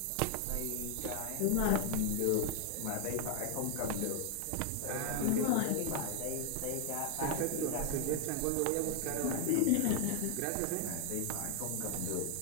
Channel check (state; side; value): different; both; correlation 0.00